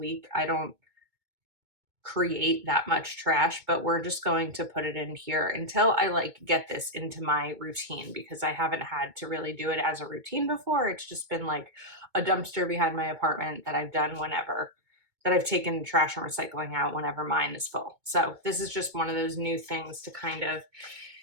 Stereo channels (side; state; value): left; late; 2.2 ms